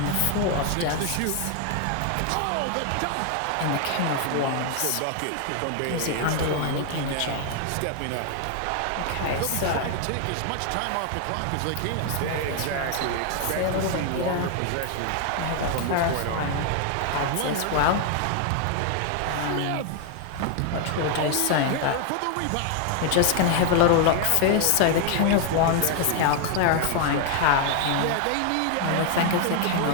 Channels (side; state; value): both; different; correlation 0.00